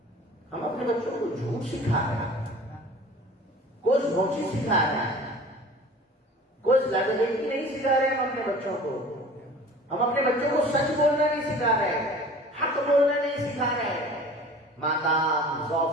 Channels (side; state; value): both; normal; correlation 0.43